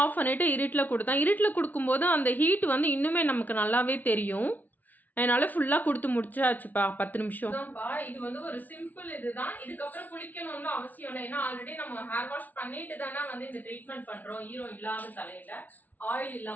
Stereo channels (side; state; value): right; late; 0.081 ms